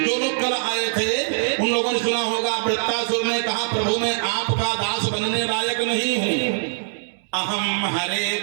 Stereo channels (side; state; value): left; silent; digital silence